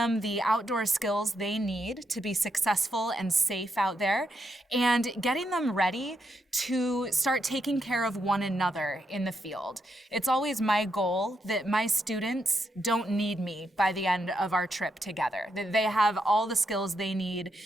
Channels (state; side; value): normal; both; correlation 0.81